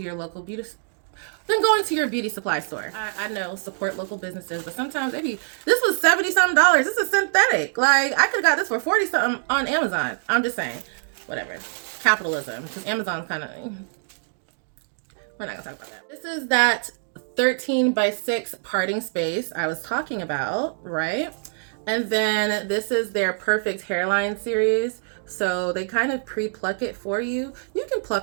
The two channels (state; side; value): silent; left; digital silence